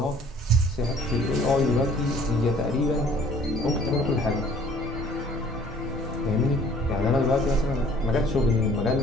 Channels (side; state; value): both; normal; correlation 0.55